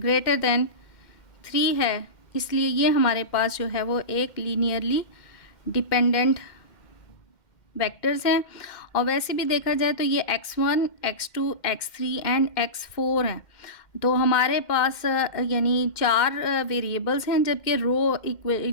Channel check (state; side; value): late; right; 2.1 ms